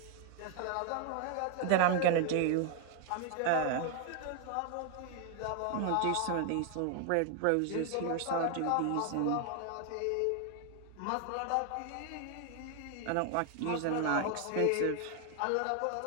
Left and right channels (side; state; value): both; different; correlation 0.00